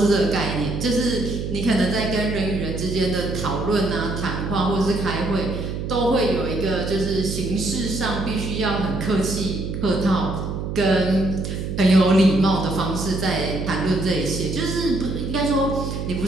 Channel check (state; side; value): noise; right; hum, 4 dB below the sound